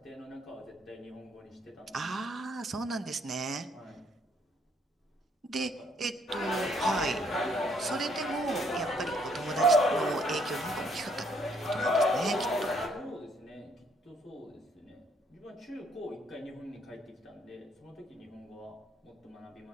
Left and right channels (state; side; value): normal; both; correlation 0.67